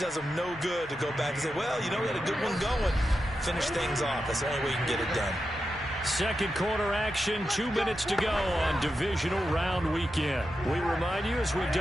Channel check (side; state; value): both; normal; correlation 0.89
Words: them no good to go back and say, well, you know, we had a good one going. Finish things off. That's the only way you can get it done. Second quarter action, 2 minutes to go on Divisional Round Weekend. We remind you, as we've